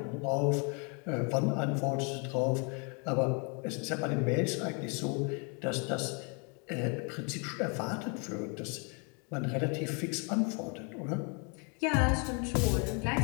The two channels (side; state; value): right; quieter; 35.4 dB